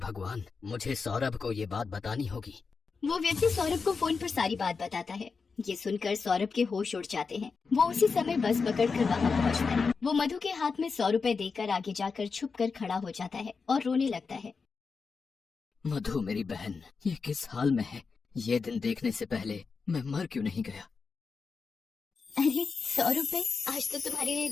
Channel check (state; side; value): quieter; right; 4.9 dB